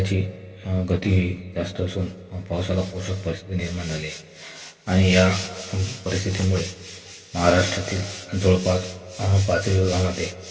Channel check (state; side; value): identical; both; correlation 1.00